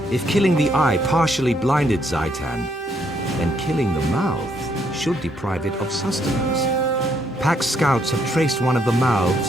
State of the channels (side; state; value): both; normal; correlation 0.72